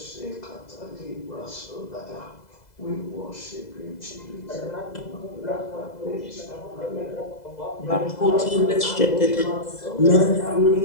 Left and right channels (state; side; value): late; right; 2.0 ms